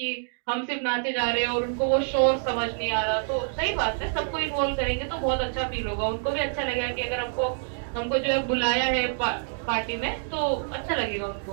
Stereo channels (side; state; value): left; silent; digital silence